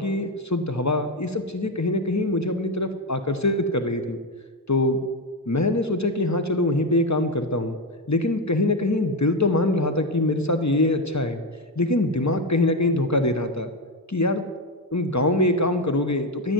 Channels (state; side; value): normal; both; correlation 0.11